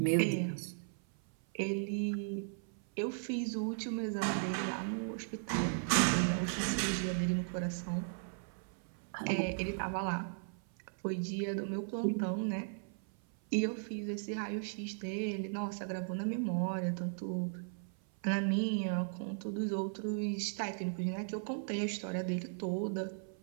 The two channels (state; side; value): silent; left; 53 dB below the other